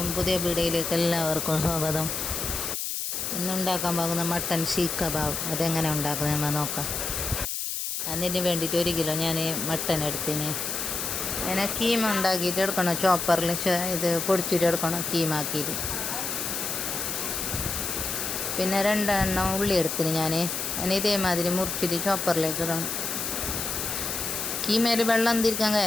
പുതിയ വീഡിയോയിലേക്ക് എല്ലാവർക്കും സ്വാഗതം. ഇന്നുണ്ടാക്കാൻ പോകുന്ന മട്ടൻ സീഖ് കബാബ് അതെങ്ങനെ ഉണ്ടാക്കുന്നത് നമ്മൾ നോക്കാം. അതിന് വേണ്ടിയിട്ട് 1 കിലോ ഞാൻ മട്ടൻ എടുത്തിന്. അതിനെ കീമ ഉണ്ടാക്കിയിട്ട് എടുക്കണം. ചോപ്പറിൽ ഇത് പൊടിച്ചിട്ട് എടുക്കണം കീമാക്കിയിട്ട്. പിന്നെ 2 എണ്ണം ഉള്ളി എടുത്തിന് ഞാൻ. അതിന് ഇതേമാതിരി മുറിച്ചിട്ട് ചോപ്പറിലേക്ക് ഇടണം. കീമയിൽ വെള്ളം തിരിക്കാൻ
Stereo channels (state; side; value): noise; left; hiss, 3 dB below the sound